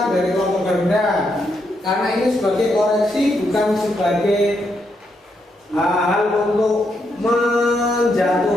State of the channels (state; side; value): normal; both; correlation 0.79